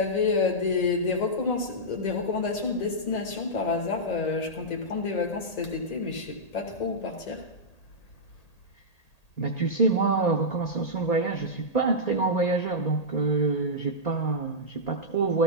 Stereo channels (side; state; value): right; late; 1.8 ms